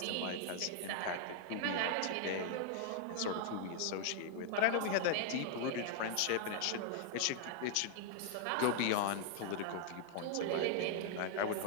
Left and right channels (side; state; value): both; different; correlation 0.00